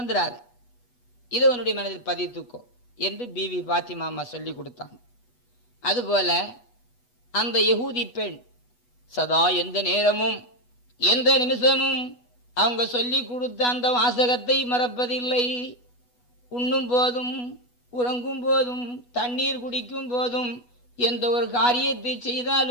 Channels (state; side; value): late; right; 8.2 ms